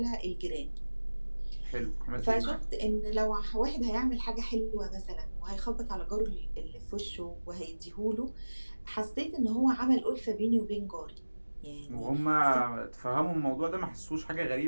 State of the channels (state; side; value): inverted; both; correlation -1.00